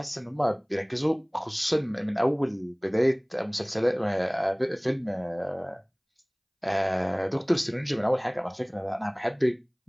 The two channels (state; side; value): identical; both; correlation 1.00